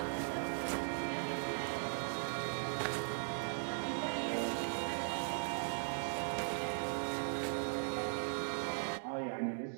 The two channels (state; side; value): silent; left; digital silence